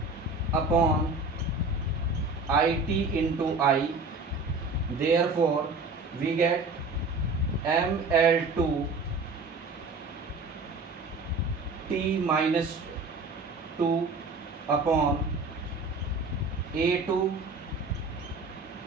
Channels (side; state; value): left; quieter; 3.5 dB